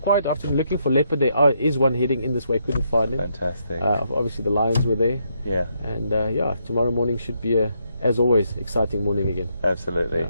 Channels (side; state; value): both; inverted; correlation -0.76